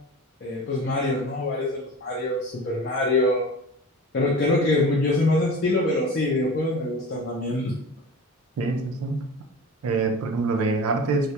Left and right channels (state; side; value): normal; both; correlation 0.35